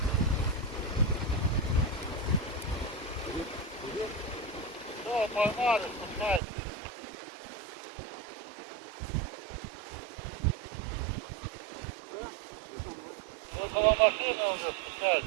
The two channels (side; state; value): left; drops out; at 6.4 s